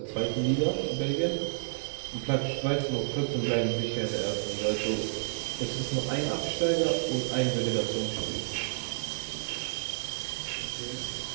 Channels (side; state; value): left; silent; digital silence